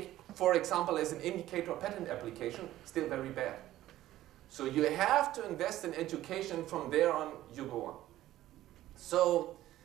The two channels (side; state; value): left; quieter; 14.4 dB